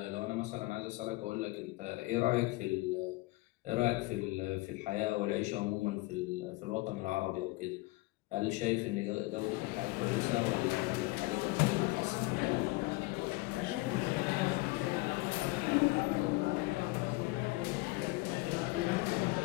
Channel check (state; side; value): quieter; right; 21.9 dB